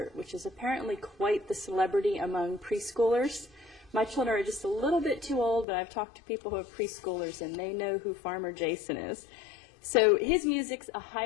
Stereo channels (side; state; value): right; drops out; at 5.7 s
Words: which is apparently quite the celebrity among preschoolers. My children are just a little bit too old, but I've talked to people who are preschoolers and they know who Farmer Jason is. So his music's a